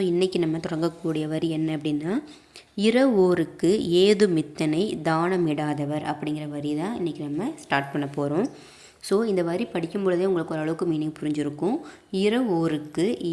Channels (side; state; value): both; identical; correlation 1.00